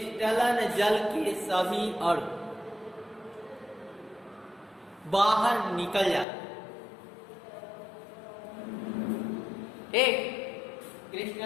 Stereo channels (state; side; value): drops out; right; at 6.2 s